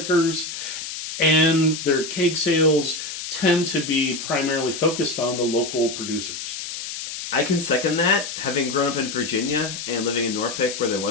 and their keg sales tend to be primarily focused on the local producers. I can second that. Having grown up in Virginia and living in Norfolk where there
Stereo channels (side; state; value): left; noise; hiss, 7 dB below the sound